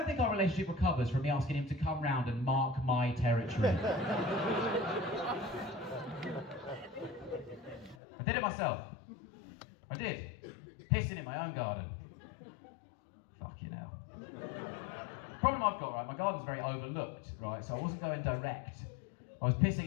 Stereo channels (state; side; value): drops out; right; at 8.0 s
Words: think our relationship recovers from me asking him to come round and mark my territory. I did it myself. I did. Pissing in my own garden. Fucking hell. Problem I've got, right, my garden's very overlooked, right, so I wasn't going direct. I was